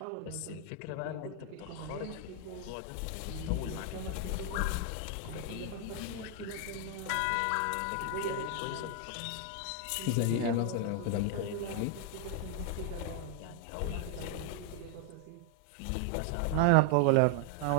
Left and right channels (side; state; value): both; different; correlation 0.00